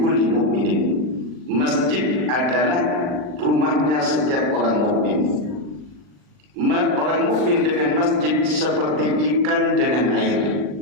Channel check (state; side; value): late; left; 39 ms